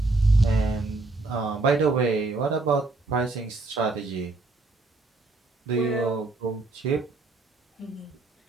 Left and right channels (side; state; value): left; quieter; 3.3 dB